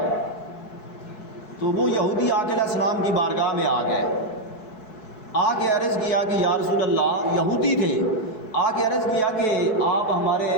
تو وہ یہودی آقا علیہ السلام کی بارگاہ میں آ گئے، آ کے عرض کیا کہ یا رسول اللہ، یہودی تھے، آ کے عرض کیا کہ آپ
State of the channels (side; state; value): right; late; 4.7 ms